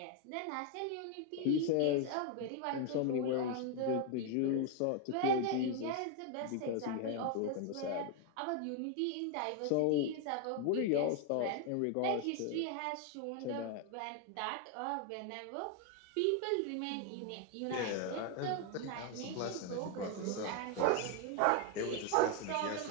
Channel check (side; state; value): both; different; correlation 0.01